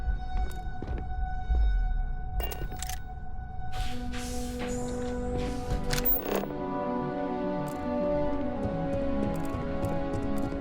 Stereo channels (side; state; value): both; identical; correlation 1.00